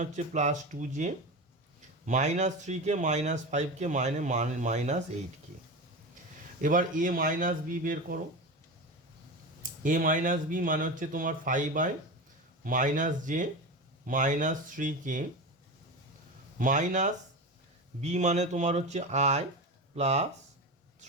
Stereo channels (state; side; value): normal; both; correlation 0.24